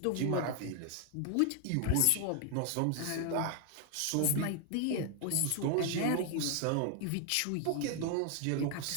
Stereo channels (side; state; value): both; different; correlation 0.00